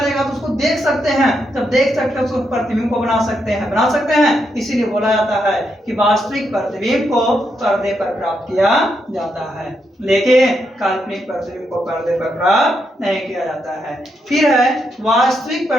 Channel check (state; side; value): normal; both; correlation 0.80